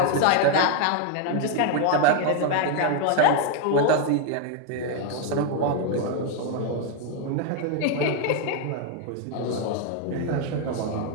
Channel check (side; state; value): both; different; correlation 0.01